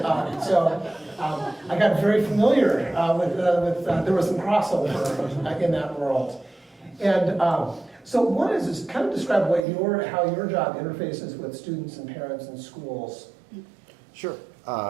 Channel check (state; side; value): drops out; left; at 9.7 s